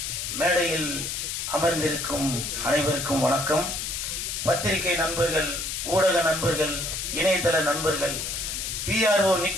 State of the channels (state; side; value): noise; left; hiss, 4 dB below the sound